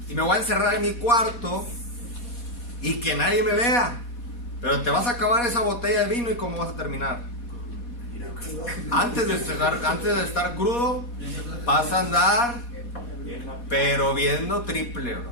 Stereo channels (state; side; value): late; right; 4.2 ms